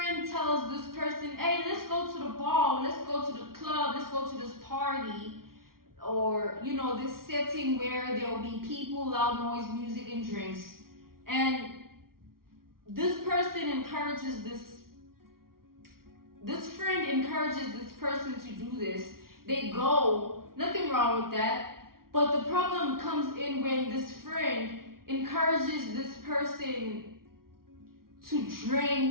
tells this person, hey, let's go to the bar, let's go to the club, let's go to this party. Or, you know, this setting where there'll be people, loud noise, music, and drinks. And this person encourages this friend encourages this person to do this. They go, nothing wrong with that. But the problem comes in when this friend encourages this person to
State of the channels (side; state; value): left; late; 0.93 ms